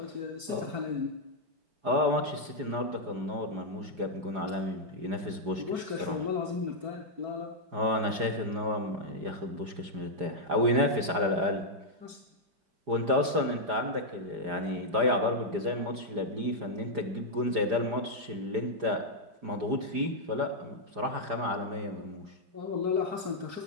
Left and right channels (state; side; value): late; left; 4.9 ms